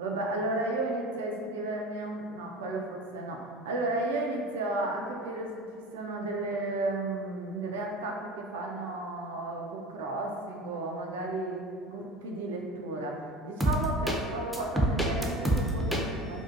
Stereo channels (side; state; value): both; normal; correlation 0.35